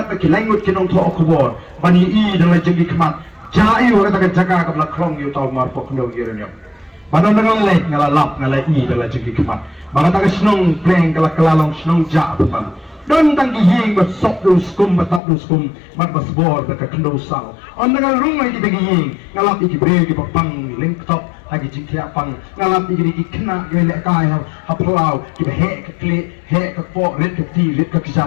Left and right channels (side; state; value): right; drops out; at 15.2 s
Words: ke langut kinong to okubor bani I dalam jenggi kemat jai orang tak jaga ke belak krong yu tau mar pok ndo yiranyam badan dengan lek ngalalap ngalai I dalam jenggi kemat bang tak senong pleng kala kelalong senong ja betam don tanggi ying bat sok du skum batap du skum bat basbor tak kendo sal on dengan rumai di bagi ying ngalap iki bre ki pang link top lagi jingkia pang ngalap iki kena gelek kai haplau ki he ke kli he ke po red ke ti red ke